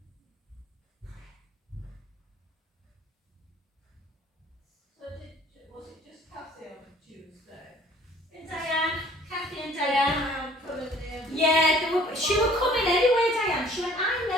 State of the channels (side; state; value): both; normal; correlation 0.55